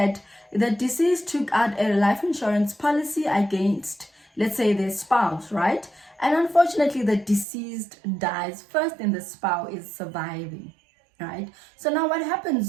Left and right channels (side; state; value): left; drops out; at 7.5 s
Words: the deceased took out a life insurance policy against, let's say, their spouse, right? And unfortunately the deceased dies first and the spouse is surviving, right? So now what